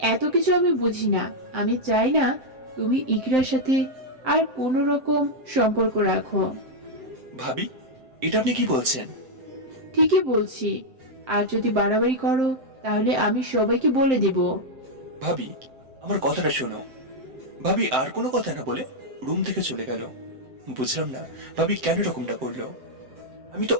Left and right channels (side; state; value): left; late; 7.7 ms